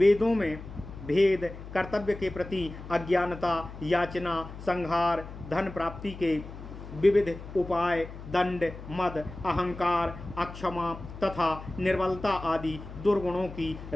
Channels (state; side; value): noise; left; hum, 13 dB below the sound